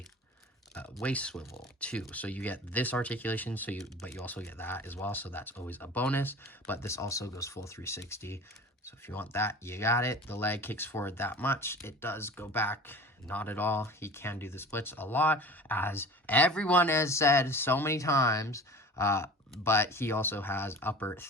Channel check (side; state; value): both; normal; correlation 0.39